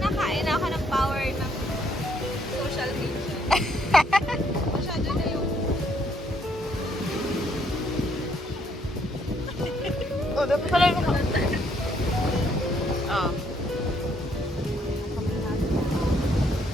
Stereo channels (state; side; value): normal; both; correlation 0.70